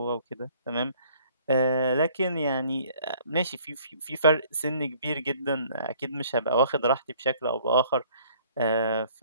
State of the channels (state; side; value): inverted; both; correlation -0.58